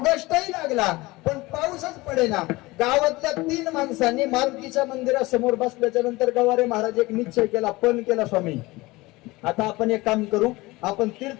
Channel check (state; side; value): quieter; right; 21.3 dB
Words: लागला पण पाऊसच पडेना. गावातल्या 3 माणसांनी मारुतीच्या मंदिरासमोर बसल्याच्या नंतर गवारे महाराज एक निश्चय केला, पण केला, स्वामी आता आपण एक काम करू, आपण